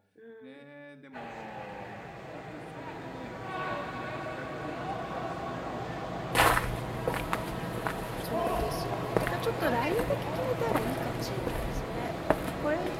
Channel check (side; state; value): both; identical; correlation 1.00